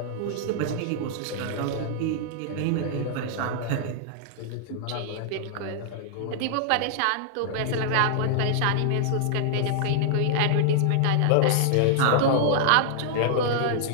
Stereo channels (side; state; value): both; different; correlation -0.01